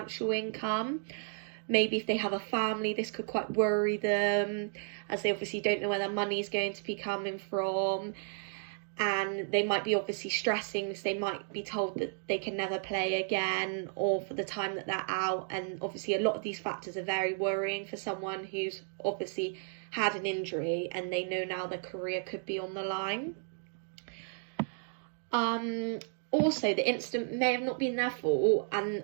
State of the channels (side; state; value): left; silent; digital silence